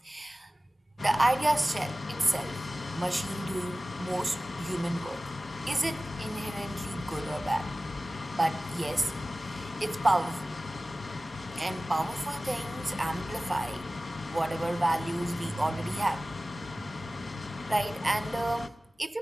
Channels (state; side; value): normal; both; correlation 0.97